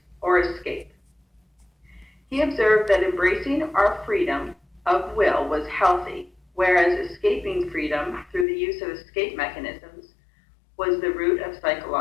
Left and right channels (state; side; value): drops out; right; at 8.5 s